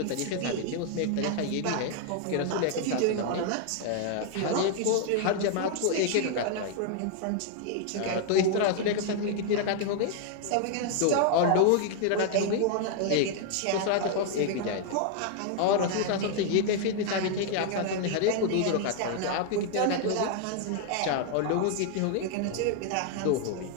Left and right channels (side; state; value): both; different; correlation 0.00